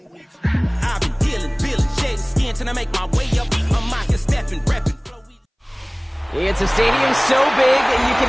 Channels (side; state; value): both; identical; correlation 1.00